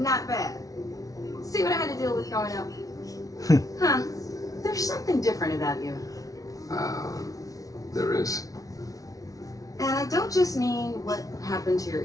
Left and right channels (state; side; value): late; right; 0.17 ms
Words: bad. See what I had to deal with growing up? Huh. There's something different about you. There is. And I don't just mean what happened to your